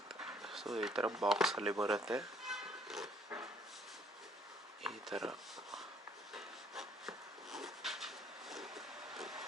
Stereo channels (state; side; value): normal; both; correlation 0.62